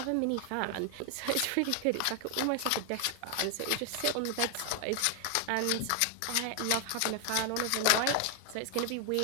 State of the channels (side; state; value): both; different; correlation 0.00